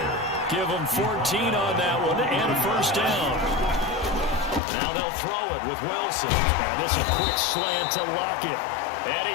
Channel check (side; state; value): right; drops out; at 4.6 s